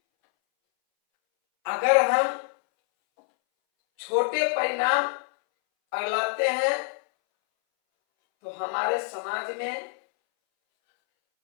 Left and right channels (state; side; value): silent; right; 61 dB below the other